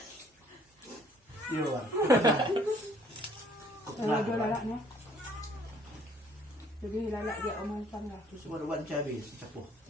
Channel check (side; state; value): both; normal; correlation 0.60